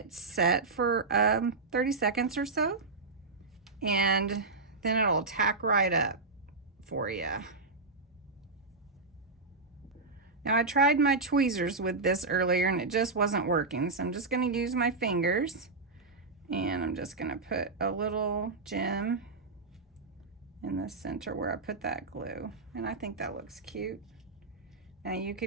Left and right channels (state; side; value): quieter; left; 3.8 dB